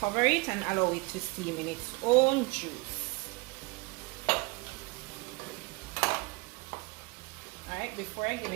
it and allow it to steam in its own juice. Alright, before I give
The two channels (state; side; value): quieter; left; 26.9 dB